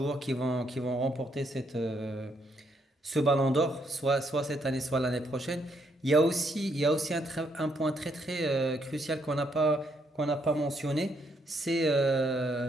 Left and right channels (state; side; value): normal; both; correlation 0.74